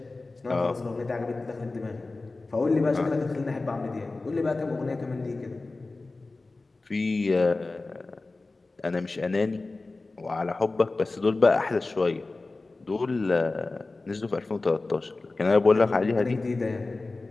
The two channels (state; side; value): quieter; right; 3.4 dB